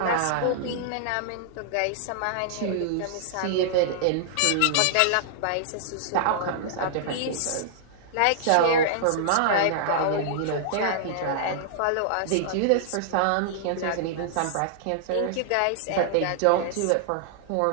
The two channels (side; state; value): both; different; correlation -0.01